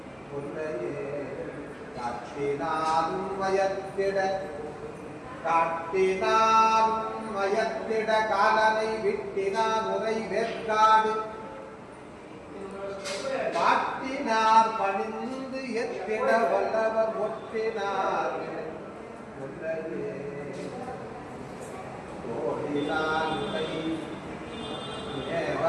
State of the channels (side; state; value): both; identical; correlation 1.00